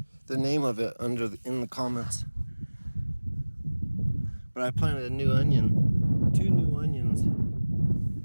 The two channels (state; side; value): inverted; both; correlation -1.00